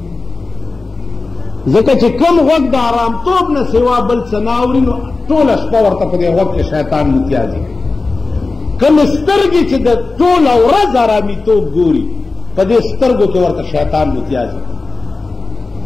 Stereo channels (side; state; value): right; quieter; 3.7 dB